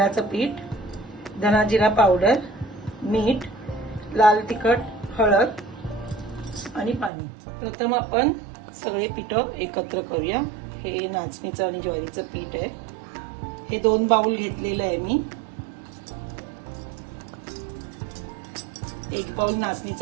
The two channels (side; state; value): left; drops out; at 7.1 s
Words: पीठ, धना जिरा पावडर, मीठ, लाल तिखट, हळद आणि पाणी। प्रथम आपण सगळे पीठ एकत्र करूया। हे नाचणीचं आणि ज्वारीचं पीठ आहे। हे 2 बाउल घेतलेलं आहे मी। 1 बाउल